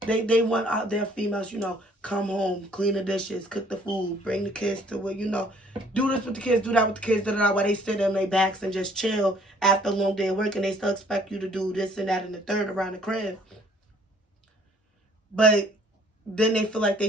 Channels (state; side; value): normal; both; correlation 0.59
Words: They want out their females, come home, clean the dishes, cook the food, bring the kids to where, do this with the kids, do that with the kids, while they sit on their backs and just chill after a long day of work, and they still expect you to do this and that and the third around the crib. But then they feel like